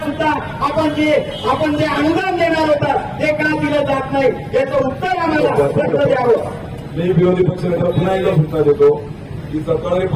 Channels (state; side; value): identical; both; correlation 1.00